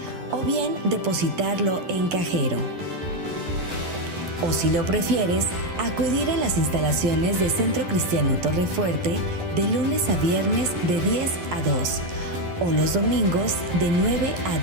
o bien depositarlo en cajero. O si lo prefieres, acudir a las instalaciones de Centro Cristiano Torrefuerte de lunes a viernes de 10 a 2 o los domingos de 9 a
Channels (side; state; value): left; late; 11 ms